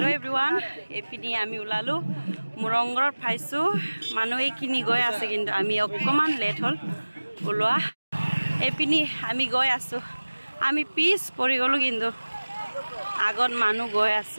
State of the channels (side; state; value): both; inverted; correlation -1.00